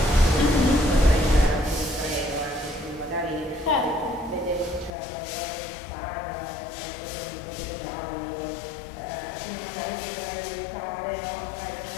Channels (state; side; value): drops out; right; at 4.9 s